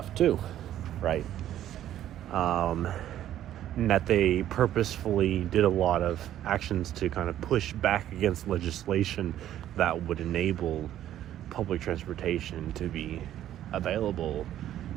too, right? And that they purposefully did a lot of actions to kind of push back against legislation that would enable public transportation to be available,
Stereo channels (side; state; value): left; quieter; 12.0 dB